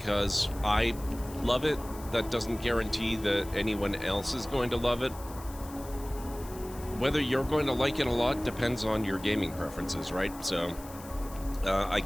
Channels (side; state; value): left; noise; hiss, 18 dB below the sound